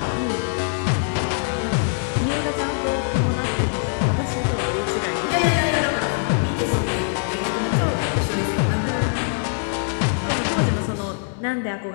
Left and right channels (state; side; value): silent; right; 59 dB below the other